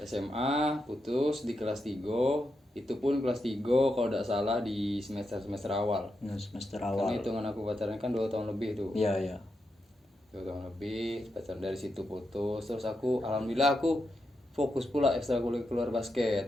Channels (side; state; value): both; normal; correlation 0.85